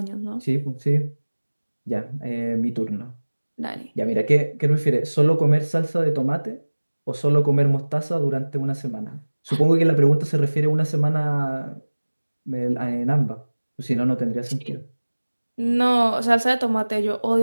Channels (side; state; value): both; inverted; correlation -1.00